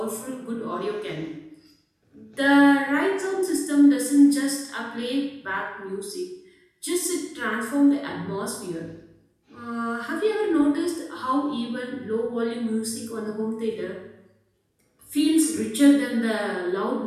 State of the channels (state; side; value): identical; both; correlation 1.00